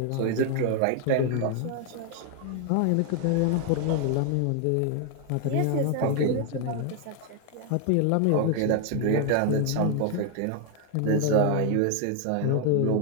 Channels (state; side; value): different; both; correlation 0.00